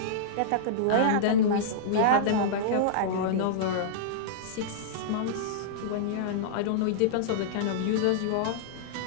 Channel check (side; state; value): both; different; correlation -0.03